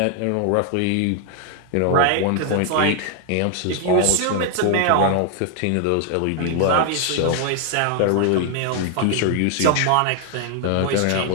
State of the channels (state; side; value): different; both; correlation 0.00